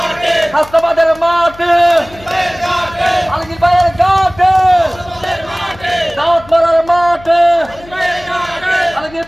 হাসনাবাদের মাঠে আলগীর ভাইয়ের ঘাটে দাওয়াত মারার মাঠে আলগীর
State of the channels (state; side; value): noise; left; hum, 21 dB below the sound